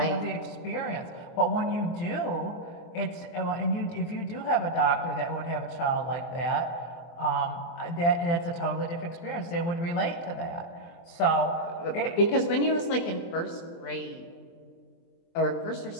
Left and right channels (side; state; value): right; late; 24 ms